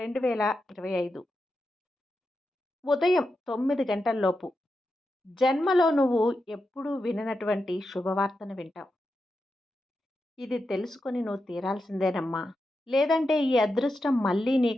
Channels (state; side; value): normal; both; correlation 0.88